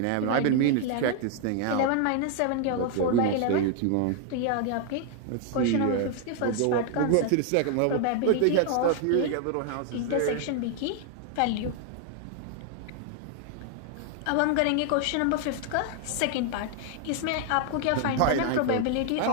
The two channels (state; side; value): different; both; correlation 0.00